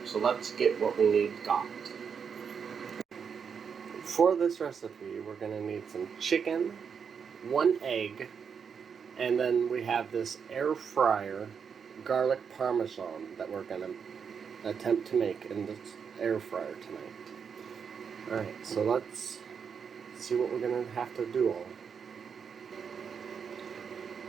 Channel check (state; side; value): quieter; left; 6.6 dB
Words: so let's get what we need got. For this recipe, we're going to need some chicken, 1 egg, and then we have this air fryer garlic parmesan that we're going to attempt to make in this air fryer tonight. Alright, so let's see what we're going to have to do all.